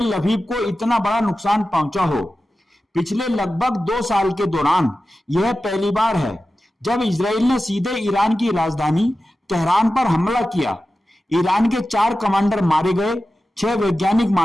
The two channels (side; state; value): both; normal; correlation 0.94